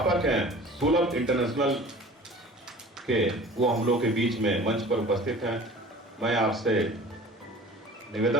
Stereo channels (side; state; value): both; normal; correlation 0.43